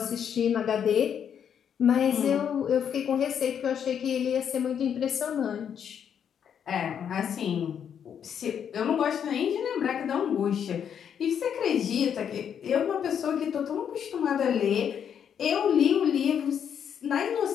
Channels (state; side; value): quieter; right; 8.3 dB